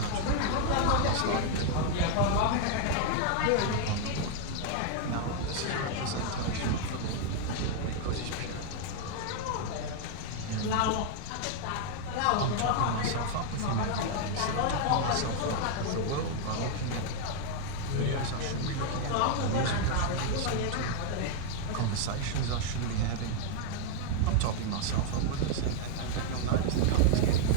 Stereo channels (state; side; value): different; both; correlation 0.00